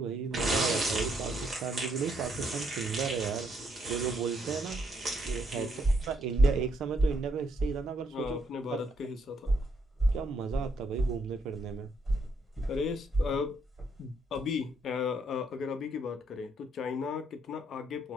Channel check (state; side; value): normal; both; correlation 0.73